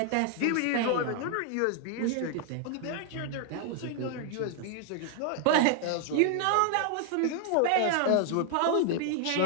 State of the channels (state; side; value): different; both; correlation 0.00